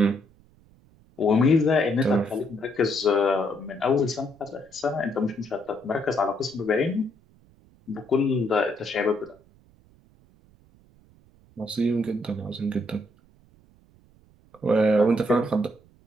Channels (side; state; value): right; noise; rumble, 29 dB below the sound